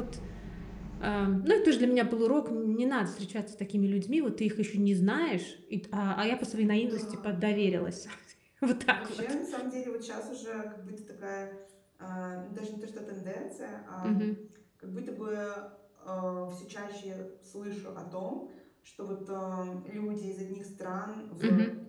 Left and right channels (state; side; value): identical; both; correlation 1.00